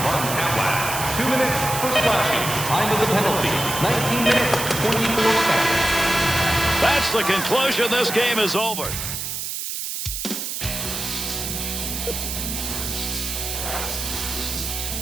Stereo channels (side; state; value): right; noise; hiss, 4 dB below the sound